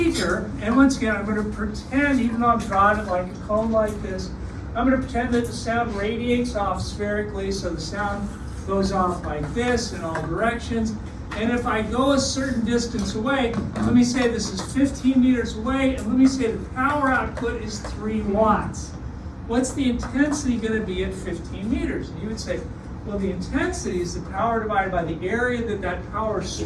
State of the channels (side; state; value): both; identical; correlation 1.00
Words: and once again, I'm going to pretend, even though I'm drawing it like a cone like this, I'm going to pretend that the sound radiates off spherically, so the sound goes off like this in all directions. And if I go a certain distance away, let me say this is 15 meters away, and let me say the power output is 3 watts. What's the intensity going to be at 15 meters? And you would say, well, the intensity is the power divided by the area that power